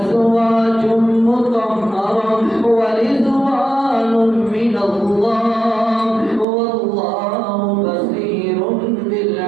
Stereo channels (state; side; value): drops out; left; at 6.5 s